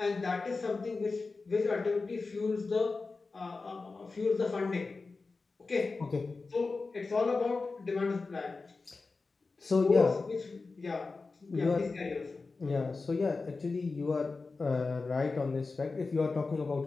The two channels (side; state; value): right; quieter; 4.0 dB